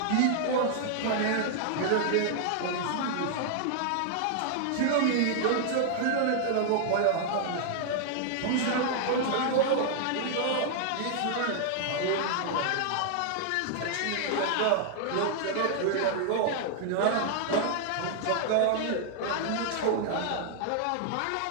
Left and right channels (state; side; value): different; both; correlation -0.01